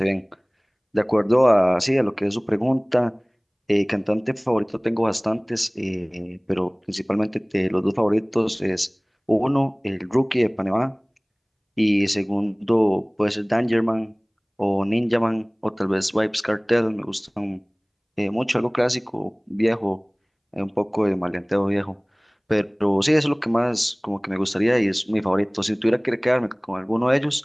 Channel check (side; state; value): both; identical; correlation 1.00